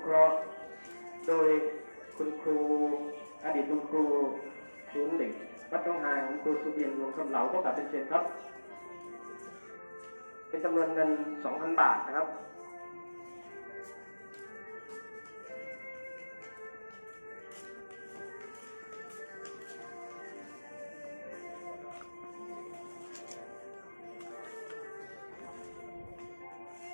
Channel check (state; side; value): inverted; both; correlation -1.00